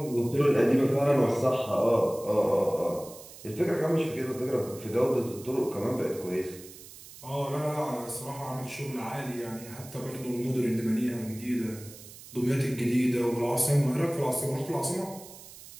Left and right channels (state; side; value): noise; right; hiss, 17 dB below the sound